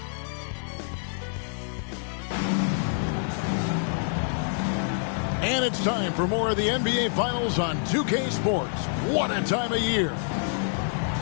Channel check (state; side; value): silent; right; digital silence